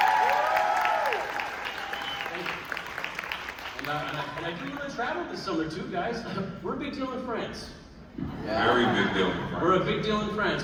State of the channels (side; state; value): both; identical; correlation 1.00